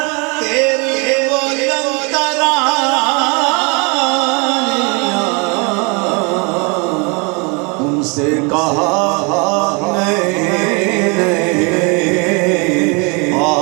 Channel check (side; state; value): left; quieter; 31.3 dB